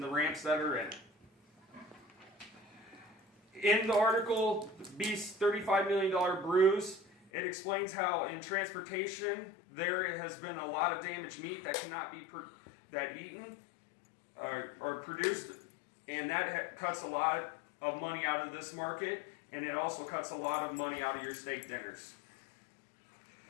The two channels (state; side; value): drops out; right; at 7.3 s